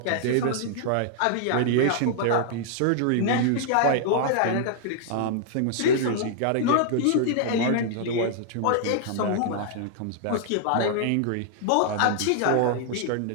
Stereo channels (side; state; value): both; different; correlation -0.01